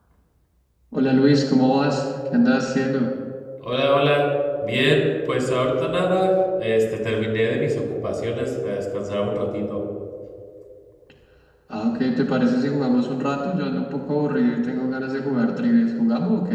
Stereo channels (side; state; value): both; identical; correlation 1.00